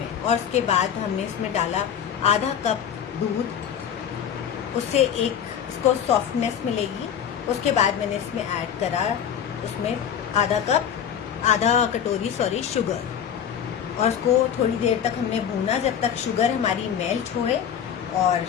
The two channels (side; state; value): right; quieter; 8.7 dB